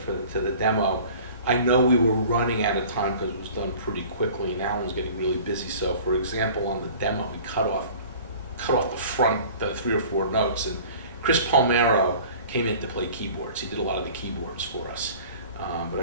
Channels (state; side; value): inverted; both; correlation -0.45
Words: to the demo, I know we were running out of time because it was done pretty quickly and Alan was getting really busy. So, for example, on the demo, we cut off the front 3 or 4 notes, and Chris Palmero came in to play keyboards. He did a lot of the keyboards for us. But I